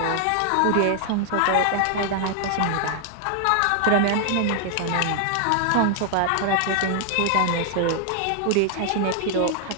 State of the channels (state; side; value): different; both; correlation 0.00